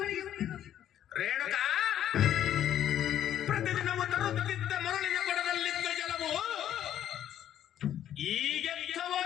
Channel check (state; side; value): quieter; right; 10.9 dB